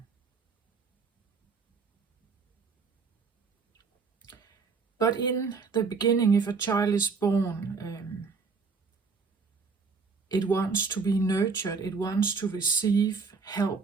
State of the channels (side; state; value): left; quieter; 4.9 dB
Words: But in the beginning, if a child is born, it wants to be nurtured, it wants to receive